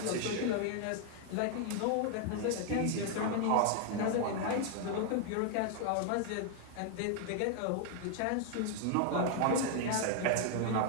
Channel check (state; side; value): different; both; correlation 0.00